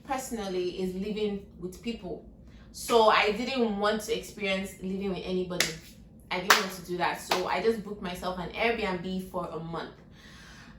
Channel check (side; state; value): both; identical; correlation 1.00